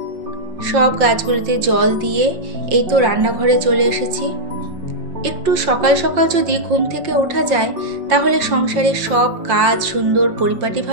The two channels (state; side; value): late; left; 5.7 ms